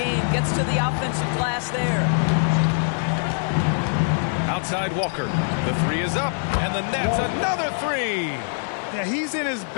Gets to the offensive glass there. Outside Walker. The 3 is up, and the net's another 3. Yeah, he's in his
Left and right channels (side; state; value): right; silent; 63 dB below the other